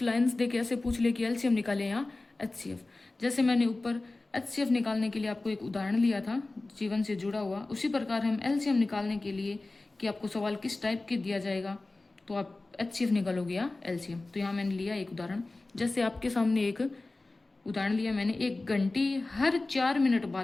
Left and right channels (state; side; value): quieter; right; 3.1 dB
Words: लाइंस देके ऐसे पूछ ले कि एलसीएम निकाले या एचसीएफ। जैसे मैंने ऊपर एचसीएफ निकालने के लिए आपको एक उदाहरण लिया था जीवन से जुड़ा हुआ, उसी प्रकार हम एलसीएम निकालने के लिए कि आपको सवाल किस टाइप के दिया जाएगा तो आप एचसीएफ निकालोगे या एलसीएम। तो यहाँ मैंने लिया एक उदाहरण, जैसे आपके सामने एक उदाहरण लिया मैंने, एक घंटी हर 4 मिनट